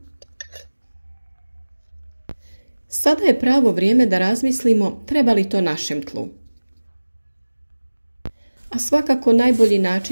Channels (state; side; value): inverted; both; correlation -1.00